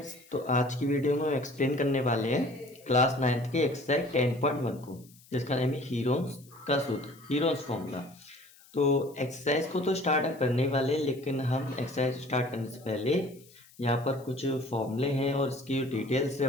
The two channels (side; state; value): left; noise; hiss, 26 dB below the sound